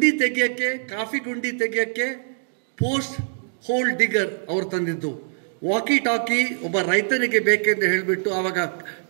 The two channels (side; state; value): left; silent; digital silence